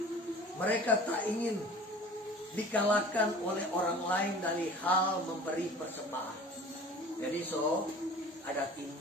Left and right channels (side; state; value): both; normal; correlation 0.42